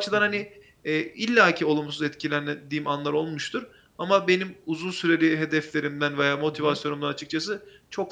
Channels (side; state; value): both; identical; correlation 1.00